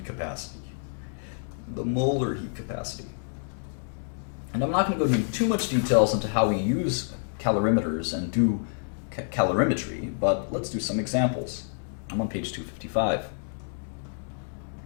capacity. The molar heat capacity. And I'm not going to go into too much details into how we use calorimeters and do calorimetry, but let's do some examples. I'm on page 255.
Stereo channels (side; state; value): right; silent; digital silence